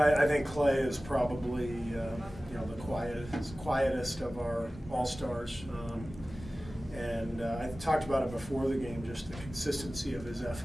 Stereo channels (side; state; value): both; normal; correlation 0.97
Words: think Klay is probably the quietest of our all-stars. And I talked about it before the game, just the consistency of his